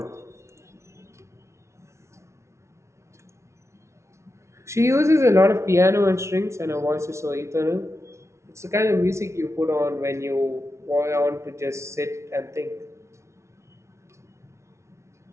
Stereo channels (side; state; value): left; late; 0.13 ms